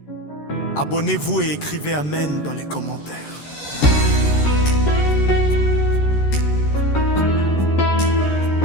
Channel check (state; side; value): late; right; 13 ms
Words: abonnez-vous et écrivez Amen dans les commentaires.